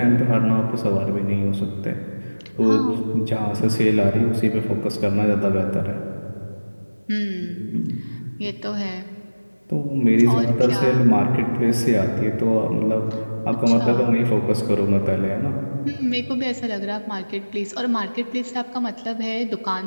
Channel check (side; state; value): both; inverted; correlation -1.00